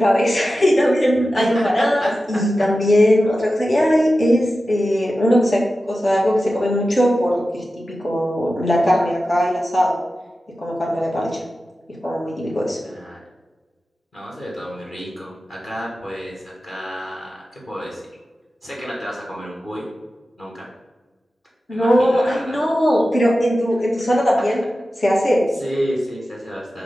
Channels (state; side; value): normal; both; correlation 0.94